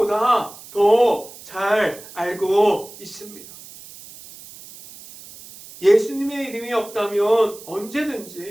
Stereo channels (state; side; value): noise; right; hiss, 18 dB below the sound